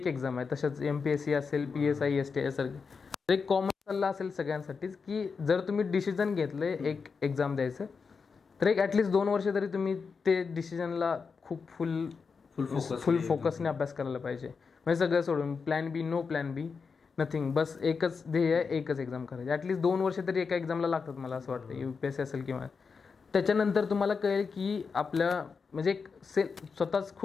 एक्झाम आहे, तसंच MPSC असेल, PSI STI सारखे. एक कॉमन सल्ला असेल सगळ्यांसाठीच की जर तुम्ही डिसिजन घेतलंय एक एक्झाम द्यायचं तर एक ॲटलिस्ट 2 वर्ष तरी तुम्ही ते डिसिजनला खूप फुल फोकसने अभ्यास करायला पाहिजे. म्हणजे सगळं सोडून प्लॅन बी, नो प्लॅन बी, नथिंग, बस एकच ध्येय आहे, एकच एक्झाम करायची. ॲटलिस्ट 2 वर्ष तरी एका एक्झामला लागतात मला असं वाटतं, UPSC असेल किंवा. त्याच्यानंतर तुम्हाला कळेल की आपल्या म्हणजे स्वतःच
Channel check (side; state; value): right; quieter; 5.3 dB